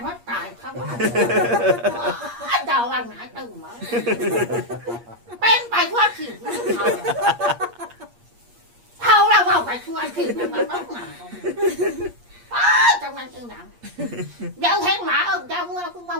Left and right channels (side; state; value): left; late; 8.5 ms